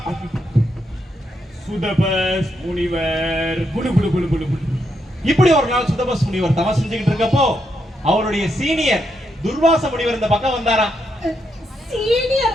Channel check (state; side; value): normal; both; correlation 0.80